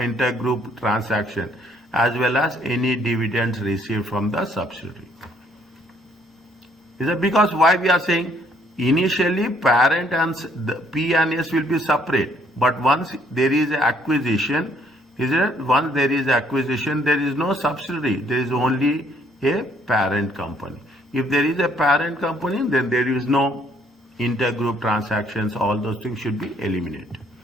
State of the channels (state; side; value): normal; both; correlation 0.65